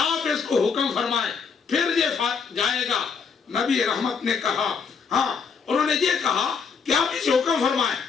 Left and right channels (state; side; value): quieter; right; 5.8 dB